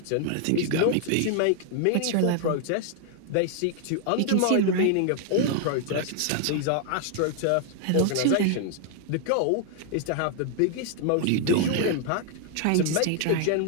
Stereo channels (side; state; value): both; different; correlation 0.00